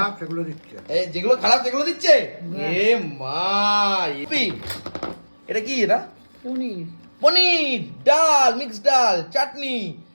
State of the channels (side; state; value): both; inverted; correlation -1.00